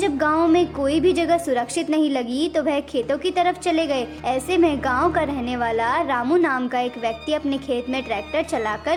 गांव में कोई भी जगह सुरक्षित नहीं लगी तो वह खेतों की तरफ चले गए। ऐसे में गांव का रहने वाला रामू नाम का एक व्यक्ति अपने खेत में ट्रैक्टर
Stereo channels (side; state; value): both; identical; correlation 1.00